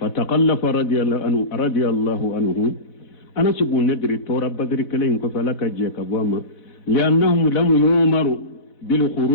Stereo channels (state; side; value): late; right; 4.1 ms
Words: رضي الله عنه انا سبو ندري تورا بدر كلي انكو فلك جيك بواما لانهم لم يؤمروا